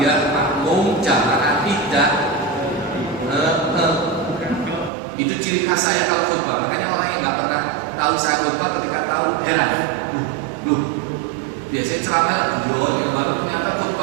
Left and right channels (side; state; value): left; drops out; at 4.9 s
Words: makmum jamaah tidak itu ciri khas saya kalau khutbah. Makanya orang yang nggak pernah tahu saya khutbah ketika tahu heran. Biasanya ceramah lah yang baru ternyata